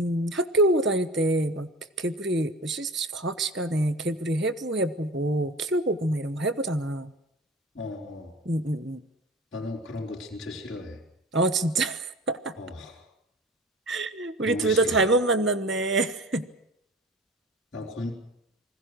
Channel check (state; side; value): normal; both; correlation 0.37